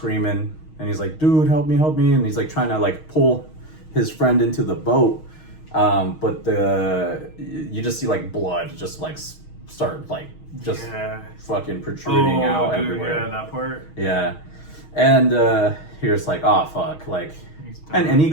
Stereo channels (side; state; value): right; late; 6.4 ms